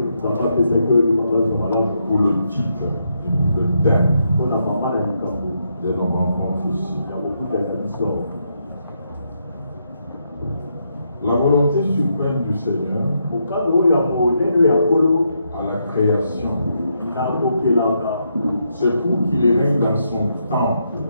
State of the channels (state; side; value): inverted; both; correlation -0.80